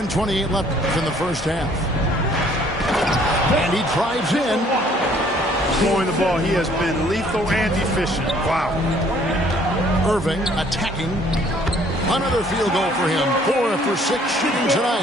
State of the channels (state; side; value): normal; both; correlation 0.60